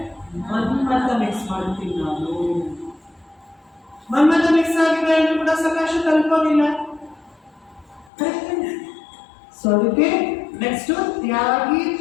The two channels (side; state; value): right; drops out; at 8.1 s